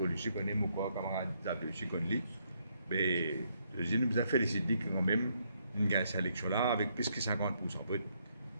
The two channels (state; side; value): inverted; both; correlation -0.74